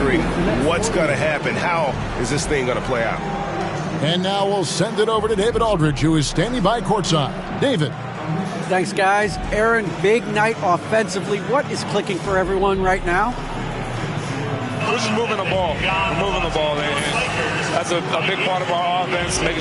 what's gonna happen. How is this thing gonna play out? And now we'll send it over to David Aldridge, who is standing by courtside. David. Thanks, guys. Aaron, big night offensively. What is clicking for everyone right now? We're just moving the ball. We're moving the ball. And that's a big part of our offense, making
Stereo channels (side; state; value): both; identical; correlation 1.00